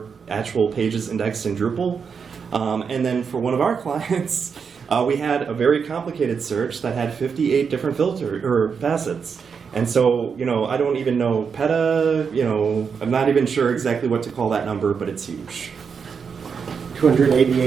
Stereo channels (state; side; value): quieter; left; 6.1 dB